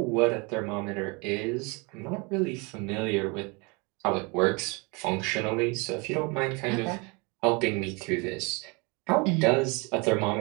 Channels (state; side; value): quieter; left; 29.4 dB